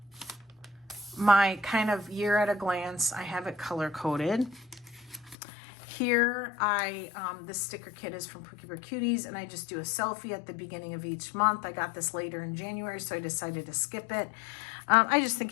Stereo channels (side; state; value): right; drops out; at 5.4 s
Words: my kind of year at a glance. I have it color coded. Here, this sticker kit is from Pookie Bear Cuties, and I just do a selfie at the beginning of each month. I got this later in January, so I decided to skip it. I just